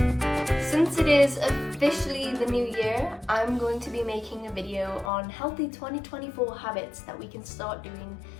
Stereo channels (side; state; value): right; drops out; at 5.1 s